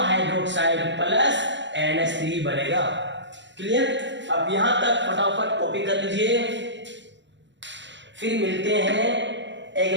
हाइड्रोक्साइड प्लस NH3 बनेगा। क्लियर। अब यहां तक फटाफट कॉपी कर लीजिए, फिर मिलते हैं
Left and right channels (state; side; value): late; left; 0.53 ms